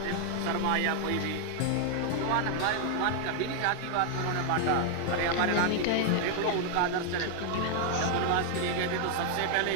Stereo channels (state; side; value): different; both; correlation 0.00